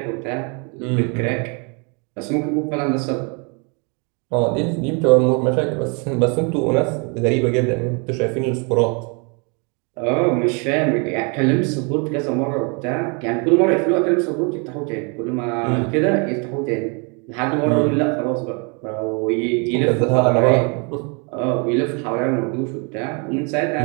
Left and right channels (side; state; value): left; quieter; 34.2 dB